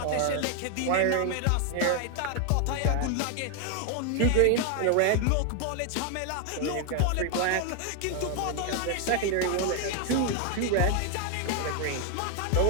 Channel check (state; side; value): different; both; correlation 0.00